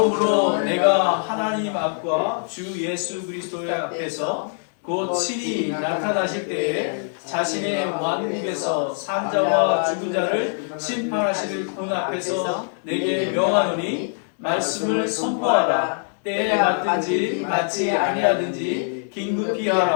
내가 하나님 앞과 주 예수 그리스도의 앞에서 곧 친히 나타나실 때에 자신의 왕국에서 산자와 죽은 자를 심판하실 분 앞에서 내게 명하노니 말씀을 선포하라. 때에 맞든지 맞지 아니하든지 긴급히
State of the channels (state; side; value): silent; right; digital silence